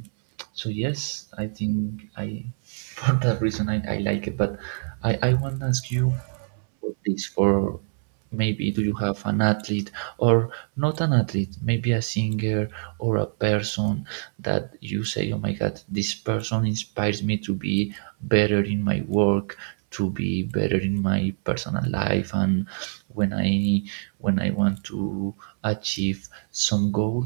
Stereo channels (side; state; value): left; silent; 62 dB below the other